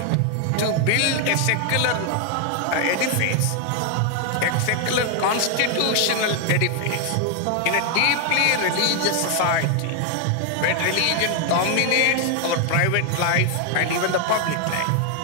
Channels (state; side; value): different; both; correlation 0.00